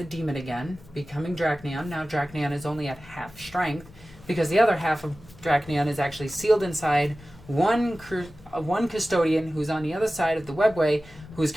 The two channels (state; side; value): noise; left; hum, 23 dB below the sound